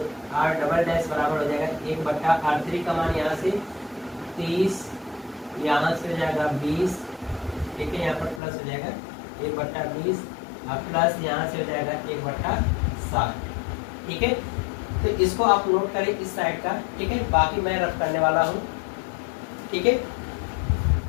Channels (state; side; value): drops out; right; at 8.4 s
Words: R डबल डैश बराबर हो जाएगा 1/r3 का मान यहाँ से 30, यहाँ से हो जाएगा 20, ठीक है, यहाँ पर प्लस हो जाएगा 1/20 और प्लस यहाँ से हो जाएगा 1/60। ठीक है, तो इसको आप नोट करें इस साइड का। ठीक है, बाकी मैं रफ करने वाला हूँ। ठीक है,